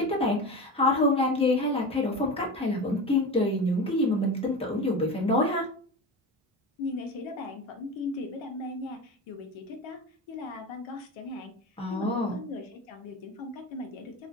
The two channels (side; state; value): both; normal; correlation 0.27